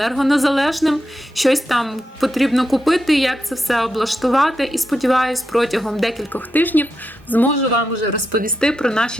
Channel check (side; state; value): both; normal; correlation 0.86